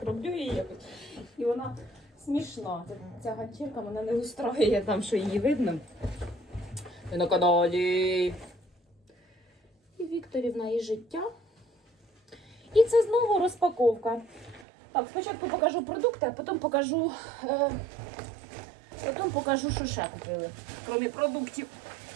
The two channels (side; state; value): left; drops out; at 14.7 s